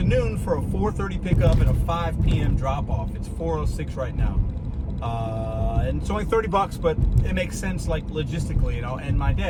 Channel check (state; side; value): identical; both; correlation 1.00